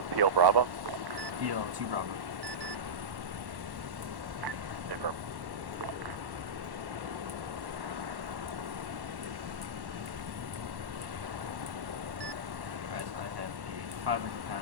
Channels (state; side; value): late; left; 1.1 ms